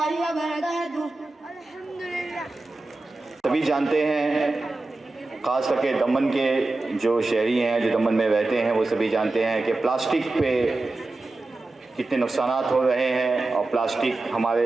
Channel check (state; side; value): quieter; left; 3.1 dB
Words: व बरकातुहू। सभी जानते हैं, ख़ास करके दमन के जो शहरी हैं जो दमन में रहते हैं वो सभी जानते हैं कि प्लास्टिक पे कितने नुकसानात हो रहे हैं। और प्लास्टिक